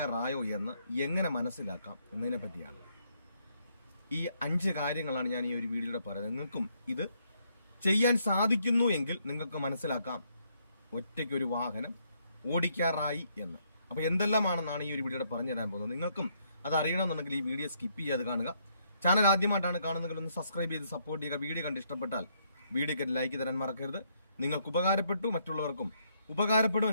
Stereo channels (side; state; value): both; inverted; correlation -0.73